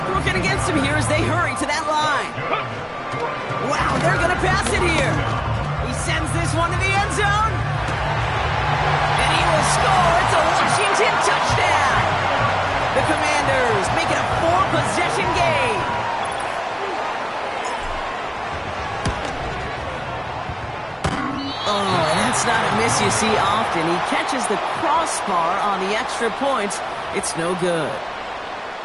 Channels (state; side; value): identical; both; correlation 1.00